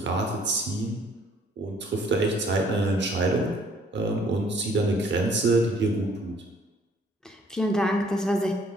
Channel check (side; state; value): both; normal; correlation 0.60